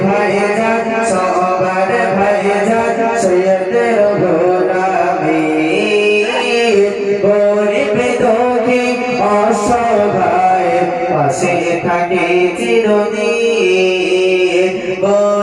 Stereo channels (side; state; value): both; identical; correlation 1.00